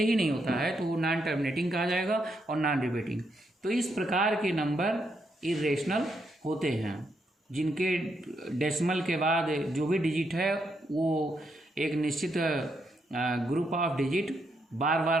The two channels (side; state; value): both; normal; correlation 0.79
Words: ही नहीं होता है, तो वो नॉन टर्मिनेटिंग कहा जाएगा और नॉन रिपीटिंग। तो इस प्रकार के नंबर इर्रेशनल होते हैं, जिनके डेसिमल के बाद जो भी डिजिट है वो एक निश्चित ग्रुप ऑफ डिजिट बार